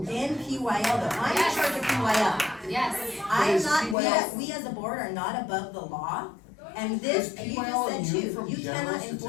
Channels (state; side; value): drops out; right; at 4.0 s